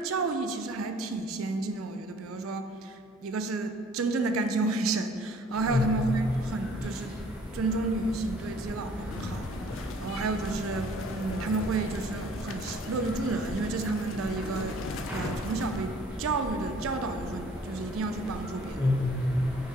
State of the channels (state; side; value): normal; both; correlation 0.55